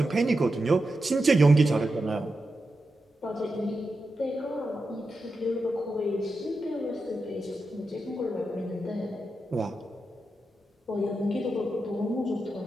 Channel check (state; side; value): normal; both; correlation 0.89